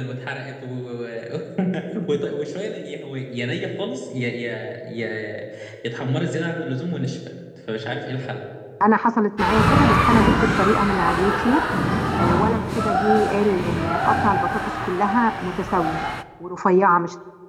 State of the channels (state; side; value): identical; both; correlation 1.00